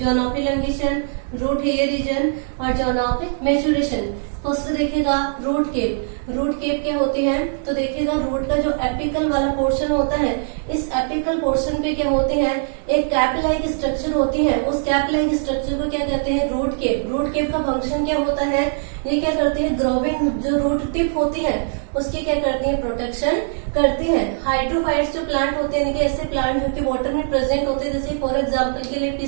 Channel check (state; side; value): silent; left; digital silence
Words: of elongation, root hair region और जोन ऑफ मैच्योरेशन। फर्स्ट देखिएगा रूट केप। रूट केप क्या होती है, तो देखिएगा रूट का जो एपिकल वाला पोर्शन होता है, इस एपिकल पोर्शन पे क्या होते हैं, एक कैप लाइक स्ट्रक्चर होती है, उस कैप लाइक स्ट्रक्चर को क्या कहते हैं, रूट केप। रूट केप का फंक्शन क्या होता है, ये क्या करती है, ग्रोविंग जो रूट टिप होती है उसकी क्या करती है, प्रोटेक्शन करती है। हाइड्रोफाइट्स जो प्लांट होते हैं, ऐसे प्लांट जो कि वाटर में प्रेजेंट होते हैं, जैसे फॉर एग्जाम्पल के लिए